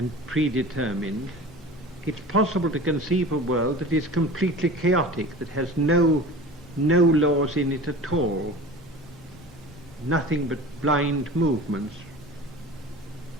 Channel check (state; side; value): normal; both; correlation 0.37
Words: predetermined. It's possible to conceive a world that is completely chaotic, that has no laws in it at all, nothing but blind movements,